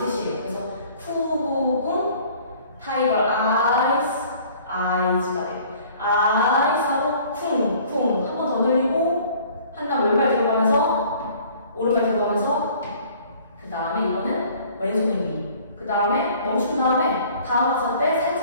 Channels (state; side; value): inverted; both; correlation -0.53